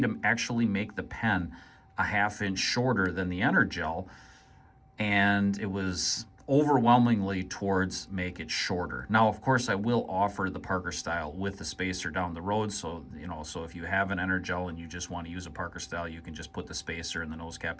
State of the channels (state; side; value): identical; both; correlation 1.00